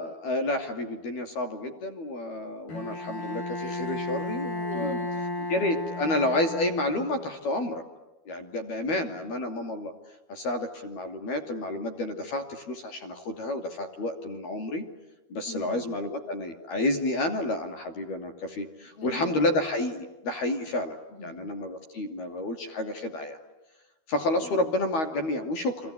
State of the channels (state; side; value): late; right; 12 ms